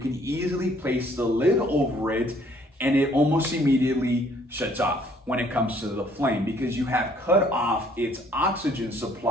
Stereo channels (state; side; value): normal; both; correlation 0.61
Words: easily place the lid over it, and it almost immediately shuts off when it comes to the flame, because you have cut off its oxygen